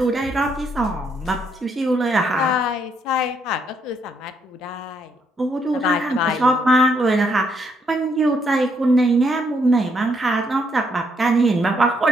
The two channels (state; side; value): normal; both; correlation 0.73